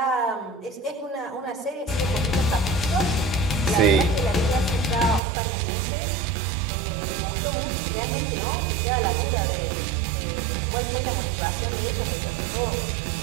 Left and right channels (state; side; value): drops out; left; at 5.2 s